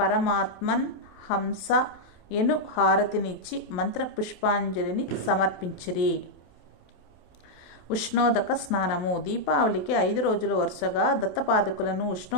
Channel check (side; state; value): right; late; 28 ms